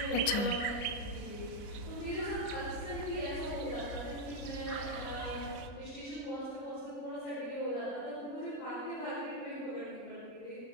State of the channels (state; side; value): late; right; 39 ms